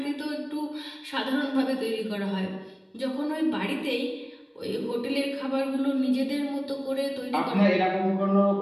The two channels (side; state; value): both; identical; correlation 1.00